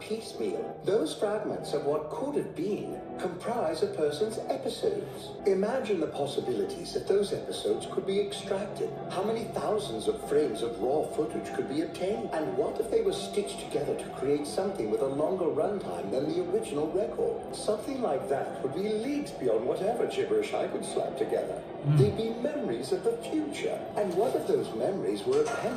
those fragments of what could have been comprise a person's episodes. Imagine the possibilities if those episodes could be extracted. How many thousands of frames of raw footage could be obtained? And what if they were stitched together to create something with a longer runtime than the original record? Something like that would be leagues beyond whatever gibberish I could slap together. They'd be memories of the future. And what if those memories were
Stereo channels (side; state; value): both; identical; correlation 1.00